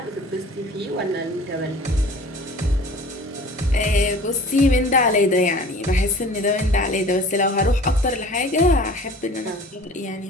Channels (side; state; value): both; normal; correlation 0.44